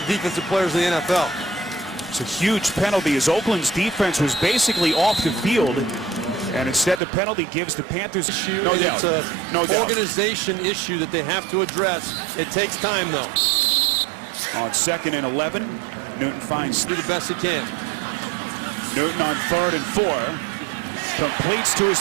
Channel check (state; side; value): drops out; left; at 7.0 s